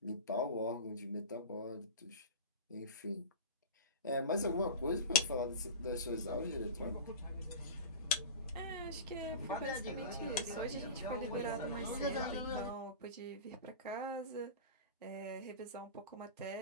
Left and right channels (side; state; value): both; inverted; correlation -0.30